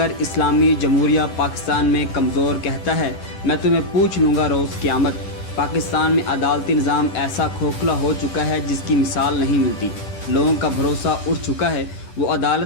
اسلامی جمہوریہ پاکستان میں کمزور کہتا ہے میں تمہیں پوچھ لوں گا روز قیامت۔ پاکستان میں عدالتی نظام ایسا کھوکھلا ہو چکا ہے جس کی مثال نہیں ملتی۔ لوگوں کا بھروسہ اٹھ چکا ہے، وہ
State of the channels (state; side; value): late; right; 10 ms